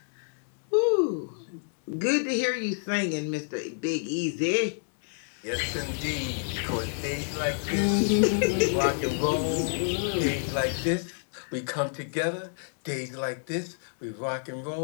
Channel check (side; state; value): right; silent; digital silence